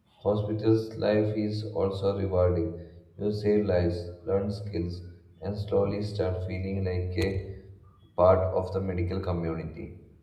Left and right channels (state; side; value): identical; both; correlation 1.00